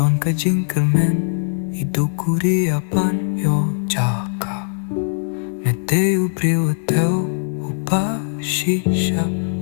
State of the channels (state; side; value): silent; right; digital silence